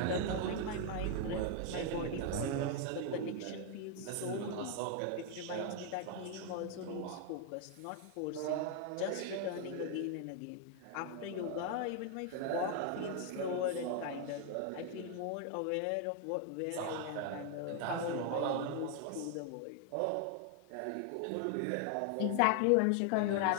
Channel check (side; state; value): both; different; correlation 0.00